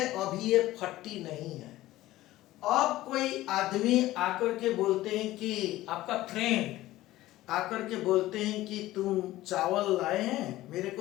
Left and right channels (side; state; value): right; quieter; 16.2 dB